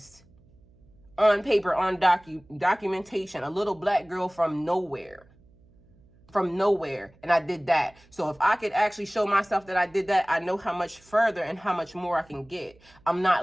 On paper, on documentation, a little black girl from nowhere, and I did that. So if I could actually show myself that I did that, I know how much further and how much more I can get. I'm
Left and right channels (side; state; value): right; noise; hum, 29 dB below the sound